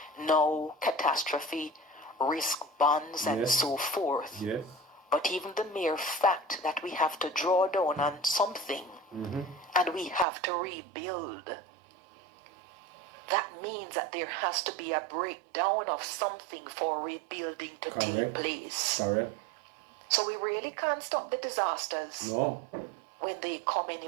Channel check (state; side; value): drops out; left; at 10.2 s